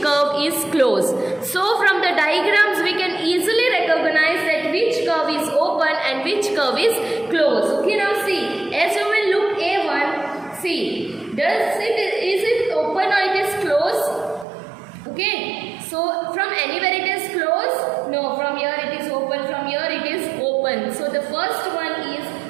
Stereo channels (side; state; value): left; drops out; at 14.5 s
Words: curve is closed. So, from the diagrams we can easily recognize that which curve is open and which curve is closed. Okay, now see, as you will look A1, see, is it open or it is closed? Okay, so from anywhere it is closed? No, from here it is open, from here it is open. So the first one is